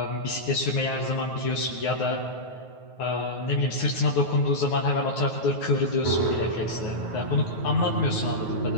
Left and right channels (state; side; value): late; right; 9.4 ms